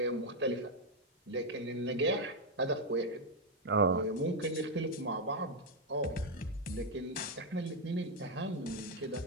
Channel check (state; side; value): normal; both; correlation 0.02